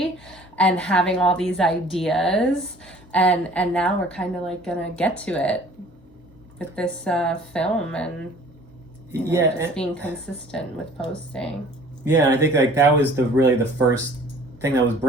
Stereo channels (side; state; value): both; normal; correlation 0.50